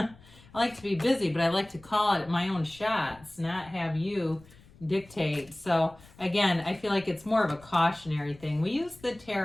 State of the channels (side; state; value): left; noise; rumble, 25 dB below the sound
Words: like to be busy, but I like to call it my own shots, not have you dictate. So again, I feel like it's more of a cautionary thing. We use the